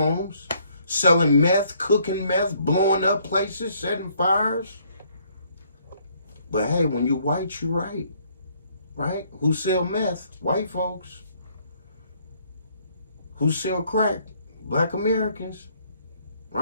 selling meth, cooking meth, blowing up places, setting fires. But hey, when you white, you right. Right? Who sell meth? White folks. Who sell crack? Black Americans.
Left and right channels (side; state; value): both; inverted; correlation -0.65